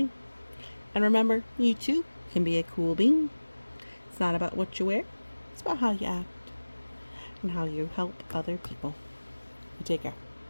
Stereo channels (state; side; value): inverted; both; correlation -1.00